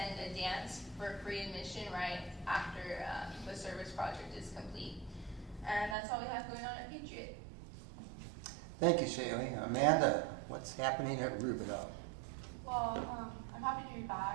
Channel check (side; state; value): left; drops out; at 6.0 s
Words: a dance for free admission right after the service project is complete. And that's all we have going on at Patriot. Thank you, Shaylee. Amanda, what's happening at Rubidoux? Well, I'm happy to be